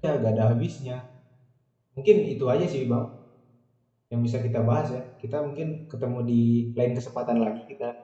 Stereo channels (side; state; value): both; identical; correlation 1.00